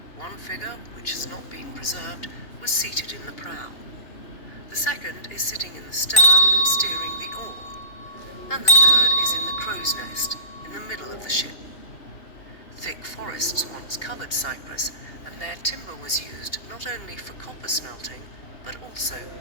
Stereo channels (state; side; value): late; right; 3.0 ms